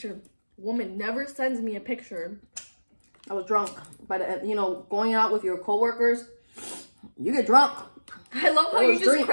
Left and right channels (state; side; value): inverted; both; correlation -1.00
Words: Woman never sends me a picture. I was drunk, but going out with your coworkers, you get drunk. I love how you just